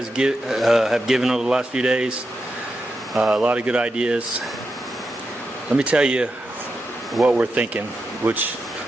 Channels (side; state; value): both; normal; correlation 0.87